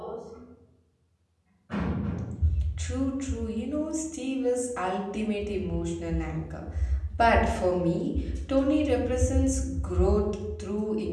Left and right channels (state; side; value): identical; both; correlation 1.00